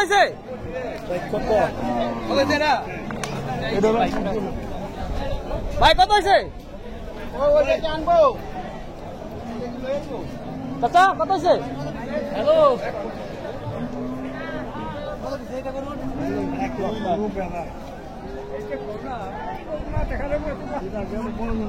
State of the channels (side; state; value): both; identical; correlation 1.00